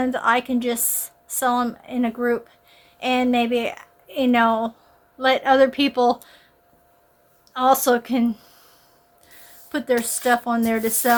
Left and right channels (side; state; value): both; identical; correlation 1.00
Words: I can just sell them in a group, and maybe, let other people also can put their stuff on there to